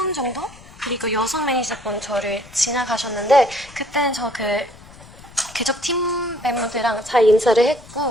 정도? 그리고 여성 매니저분 저를 지나가셨는데, 그때는 계속 팀 멤버들이랑 잘 인사를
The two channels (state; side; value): noise; left; rumble, 21 dB below the sound